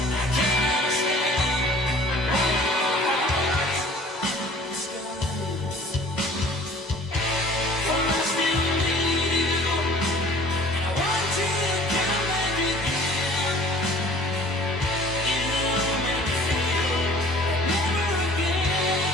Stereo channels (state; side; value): normal; both; correlation 0.49